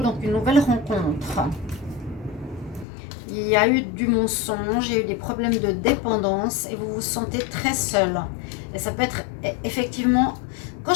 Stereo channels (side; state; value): right; drops out; at 2.9 s